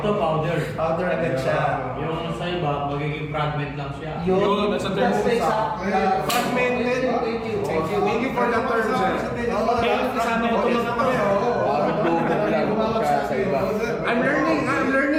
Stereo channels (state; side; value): identical; both; correlation 1.00